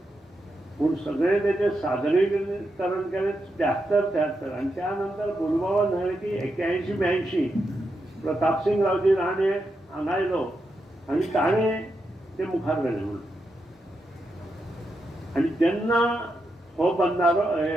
पूण सगळें तेचें सादरीकरण केलें 73-73 आनी त्या नंतर भोलूबाबा न्हय की 81-82 प्रतापसिंग रावजी राणे हांगा आयलो आनी ताणें तें मुखार व्हेलें म्हणून. आनी जेन्ना हो बंधारो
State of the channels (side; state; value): both; normal; correlation 0.85